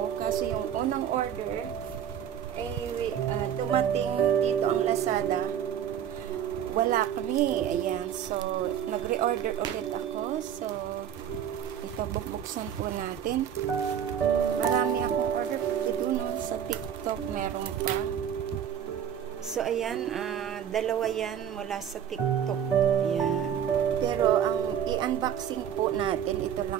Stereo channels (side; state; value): left; quieter; 9.2 dB